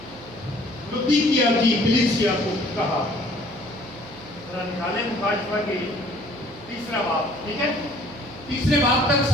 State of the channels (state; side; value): noise; right; hum, 20 dB below the sound